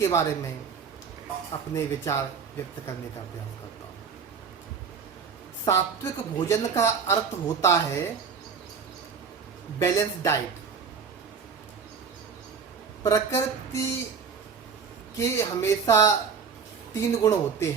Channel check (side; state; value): left; quieter; 6.0 dB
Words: बारे में अपने विचार व्यक्त करने का प्रयास करता हूँ। सात्विक भोजन का अर्थ होता है बैलेंस डाइट। प्रकृति के हमेशा तीन गुण होते